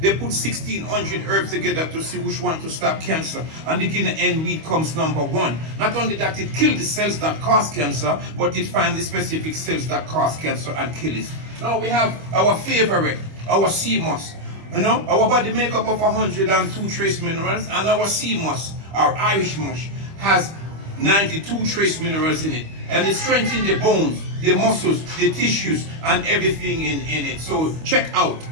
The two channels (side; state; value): left; late; 25 ms